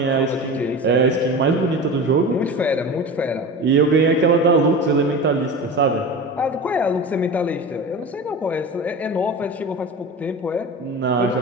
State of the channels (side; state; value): both; normal; correlation 0.31